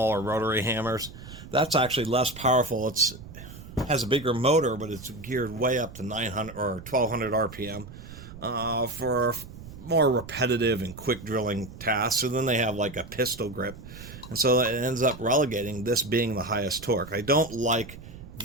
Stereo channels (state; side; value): noise; right; rumble, 15 dB below the sound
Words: rotary hammers. That's actually less powerful. It has a bigger motor, but it's geared way up to 900 or 1200 RPM for more repetitive and quick drilling tasks. And then they have like a pistol grip. And so it ends up relegating this being the highest torque. I don't like